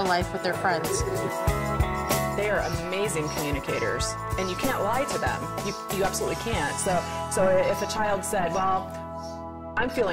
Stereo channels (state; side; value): identical; both; correlation 1.00